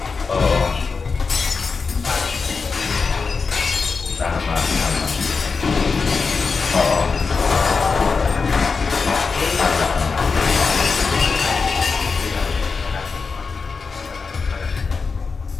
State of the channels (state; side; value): quieter; right; 4.8 dB